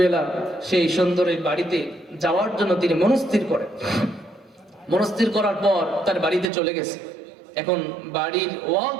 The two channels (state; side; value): drops out; left; at 6.5 s